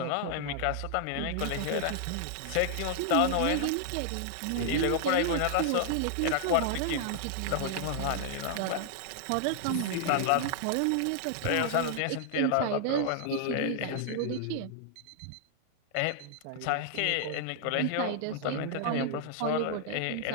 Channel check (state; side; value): different; both; correlation -0.01